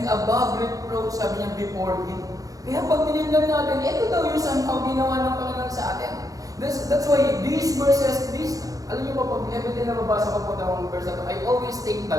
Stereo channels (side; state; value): left; late; 0.17 ms